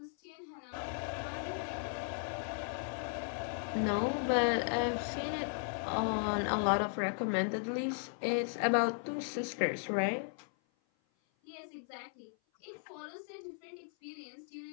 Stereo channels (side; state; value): right; silent; 53 dB below the other